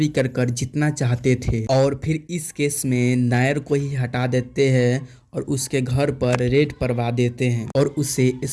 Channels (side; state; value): both; identical; correlation 1.00